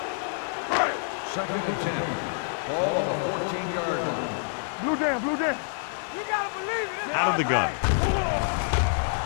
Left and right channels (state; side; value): silent; right; digital silence